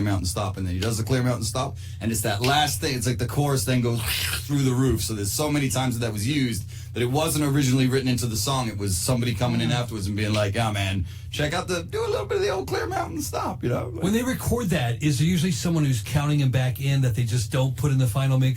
Stop. And then he does the Clearmountain Stop. And it's that last thing. It's like the chorus then goes through the roof. So there's so many times that was used that it wasn't originally written into the song. It was somebody coming in afterwards and being like, yeah, man, check out do a little bit of the old Clearmountain Stop, you know? When they record that, is there usually someone who's counting them back in that they just don't put in the final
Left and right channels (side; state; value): both; identical; correlation 1.00